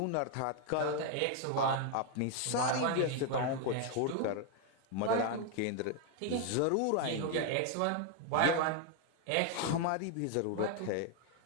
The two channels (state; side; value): different; both; correlation 0.01